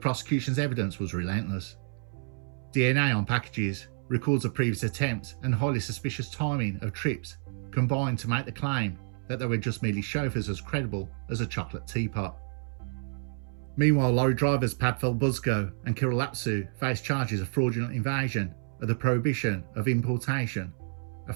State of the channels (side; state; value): left; silent; 58 dB below the other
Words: evidence was relentless. DNA on packages, records of previous attempts, and highly suspicious timing of trips combined to make the claim that they were just merely chauffeurs as credible as a chocolate teapot. Meanwhile, lorry drivers Padfel Buzko and Kirill Lapsu faced charges of fraudulent invasion of the prohibition of importation, a